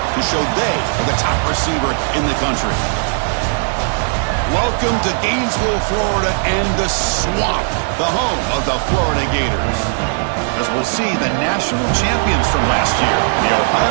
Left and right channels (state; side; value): silent; left; 60 dB below the other